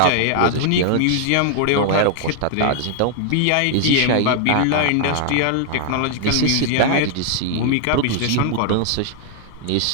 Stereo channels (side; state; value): both; different; correlation 0.00